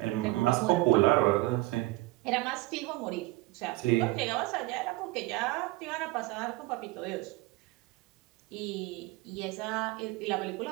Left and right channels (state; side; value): quieter; left; 19.8 dB